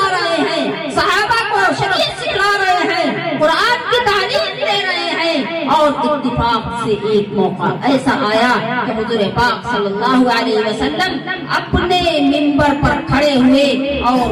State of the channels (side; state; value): both; identical; correlation 1.00